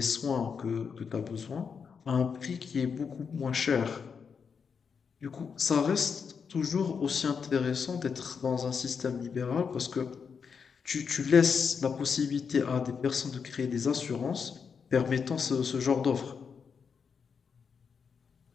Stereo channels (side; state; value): right; quieter; 6.1 dB